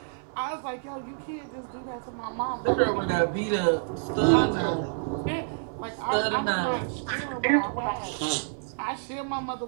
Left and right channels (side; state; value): left; silent; digital silence